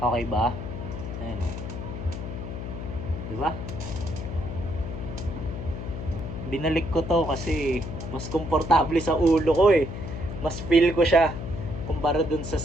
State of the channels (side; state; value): left; noise; hum, 7 dB below the sound